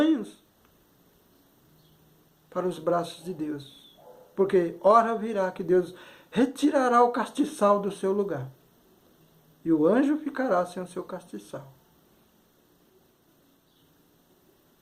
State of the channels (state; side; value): identical; both; correlation 1.00